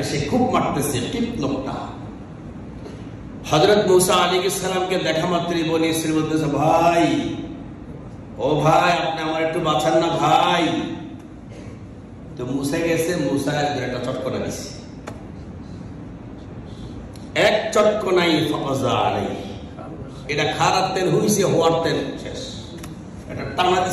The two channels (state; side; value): identical; both; correlation 1.00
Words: সে খুব মারতেছে, কিপ্ত লোকটা। হযরত মূসা আলাইহিস সালামকে দেখা মাত্রই বনি ইসরাইল বলতেছে, ভাই, ও ভাই, আপনি আমার একটু বাঁচান না ভাই। তো মূসা গেছে, মূসা একটা চটকনা দিছে, এক চটকনাই ফাযা আলাইহি, এটা খারাপ তেল হইছে, হওয়ার তেল শেষ, এটা টানা